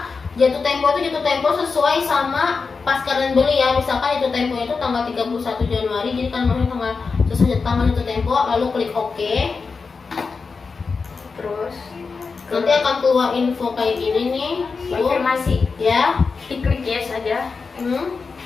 jatuh tempo itu jatuh tempo sesuai sama pas kalian beli ya. Misalkan itu tempo itu tanggal 31 Januari, jadi kalian masuk tanggal sesuai tanggal jatuh tempo, lalu klik OK. Terus Nanti akan keluar info kayak gini nih. Tuh, Konfirmasi. ya. diklik yes aja.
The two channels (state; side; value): quieter; right; 4.8 dB